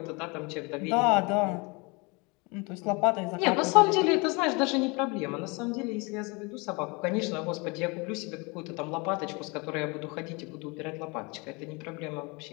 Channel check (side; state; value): right; quieter; 28.3 dB